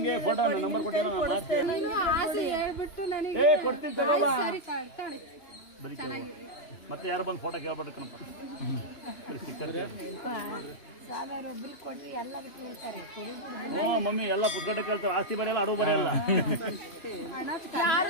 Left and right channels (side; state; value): right; late; 2.9 ms